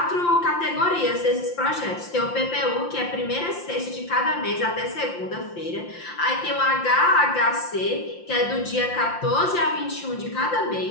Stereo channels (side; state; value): right; late; 5.8 ms